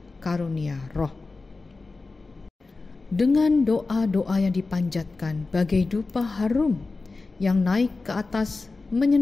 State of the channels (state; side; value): quieter; right; 3.7 dB